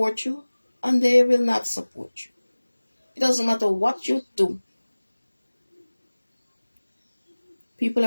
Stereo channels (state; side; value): inverted; both; correlation -1.00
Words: you and they will not support you. It doesn't matter what you do. People